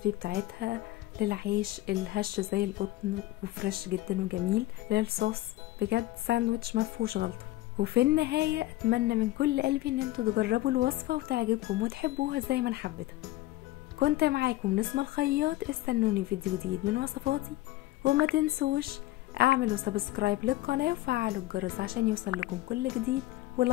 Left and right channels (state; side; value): quieter; right; 16.9 dB